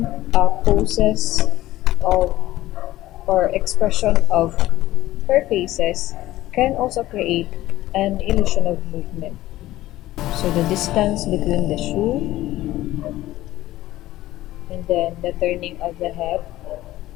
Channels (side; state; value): right; quieter; 15.7 dB